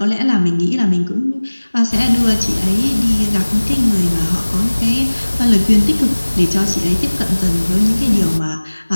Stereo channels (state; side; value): inverted; both; correlation -1.00